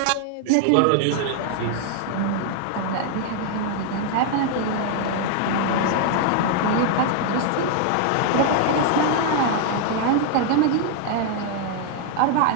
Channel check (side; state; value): both; different; correlation 0.00